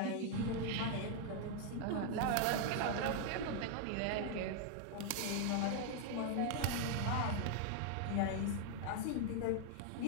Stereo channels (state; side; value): different; both; correlation 0.00